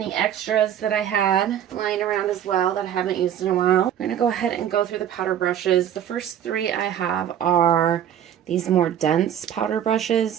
extras that I had lying around as well that I haven't used in a while. I'm gonna go ahead and go through the powder brushes. The first three I have are these more dense powder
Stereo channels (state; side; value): quieter; left; 9.9 dB